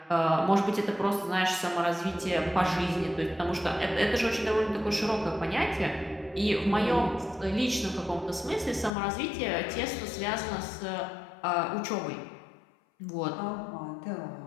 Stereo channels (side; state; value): right; drops out; at 8.9 s